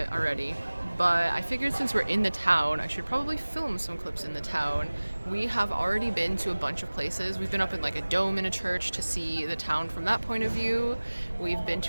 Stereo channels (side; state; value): both; inverted; correlation -1.00